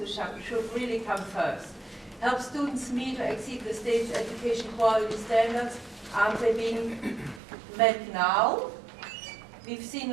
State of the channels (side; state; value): left; drops out; at 7.4 s